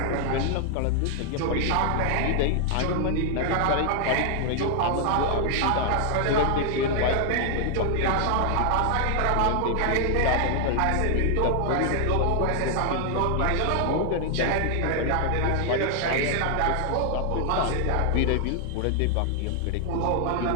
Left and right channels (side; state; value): both; different; correlation 0.00